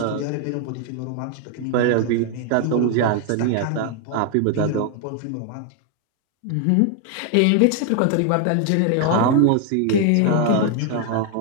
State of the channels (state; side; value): different; both; correlation 0.00